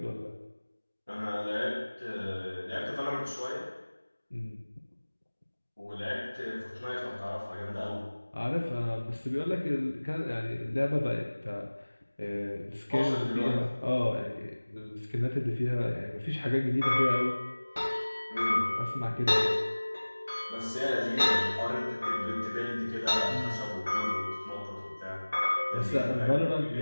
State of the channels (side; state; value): both; inverted; correlation -1.00